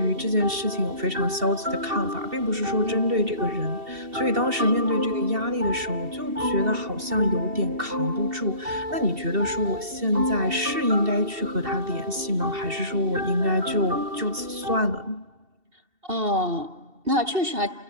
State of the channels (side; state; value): left; late; 2.7 ms